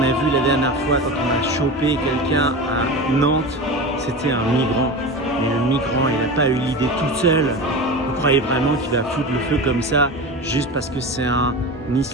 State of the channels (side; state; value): both; normal; correlation 0.27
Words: a vu la dernière fois quand on a chopé quelqu'un à Nantes? C'était un migrant. Mais le migrant, il n'a pas eu l'idée toute seule. Vous croyez vraiment qu'il va foutre le feu comme ça juste parce que c'est un